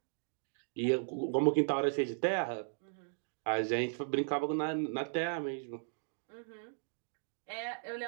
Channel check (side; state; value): left; silent; digital silence